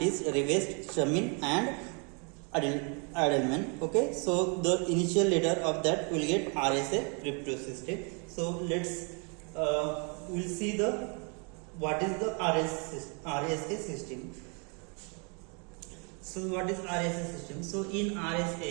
Rivest, Shamin and Edelman. Okay, so the initial letter of that will get RSA cryptosystem. So let's we'll see the what is the RSA system. So what is RSA system? So in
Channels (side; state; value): left; quieter; 36.2 dB